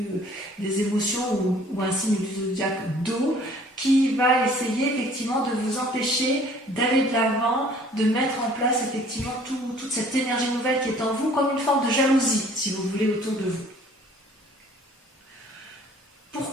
des émotions, ou un signe du zodiaque d'eau, qui va essayer effectivement de vous empêcher d'aller de l'avant, de mettre en place effectivement toute cette énergie nouvelle qui est en vous, comme une forme de jalousie, si vous voulez, autour de vous.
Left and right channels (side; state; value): both; normal; correlation 0.54